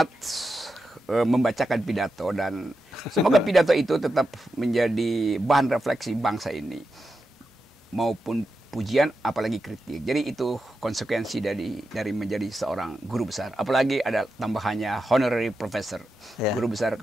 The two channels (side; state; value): both; normal; correlation 0.88